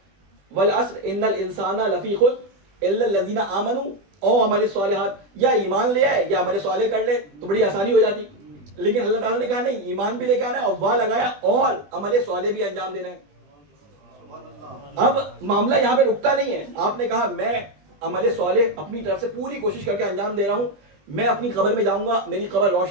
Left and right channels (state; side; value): late; left; 20 ms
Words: والعصر ان الانسان لفی خسر الا الذین آمنوا او عمل الصالحات, یا ایمان لے آئے یا عمل صالح کر لے تو بڑی آسانی ہو جاتی. لیکن اللہ تعالیٰ نے کہا نہیں, ایمان بھی لے کے آنا ہے اور وا لگایا اور عمل صالح بھی انجام دینا ہے. اب معاملہ یہاں پہ رکتا نہیں ہے, آپ نے کہا میں عمل صالح اپنی طرف سے پوری کوشش کر کے انجام دے رہا ہوں, میں اپنی قبر میں جاؤں گا, میری قبر